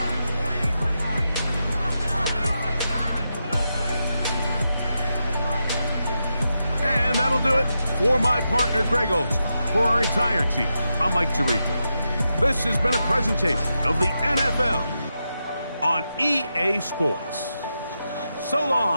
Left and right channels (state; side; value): inverted; both; correlation -0.87